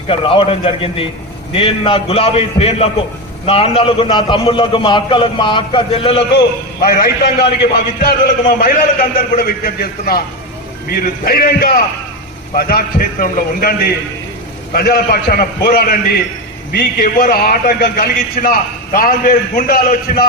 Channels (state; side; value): normal; both; correlation 0.15